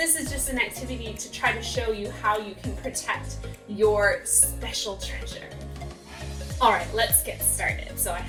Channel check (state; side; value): identical; both; correlation 1.00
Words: is just an activity to try to show you how you can protect your special treasure. All right, let's get started. So I